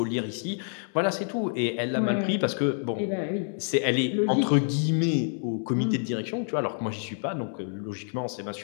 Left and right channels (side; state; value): right; silent; digital silence